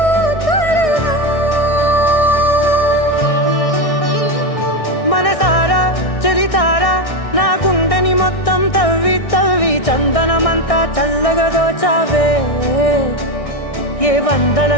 త్వరగా మనసారా చలితారా నా గుండెని మొత్తం తవ్వి తవ్వి చందనమంతా చల్లగా దోచావే. ఏ వందల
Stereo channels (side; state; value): right; late; 1.6 ms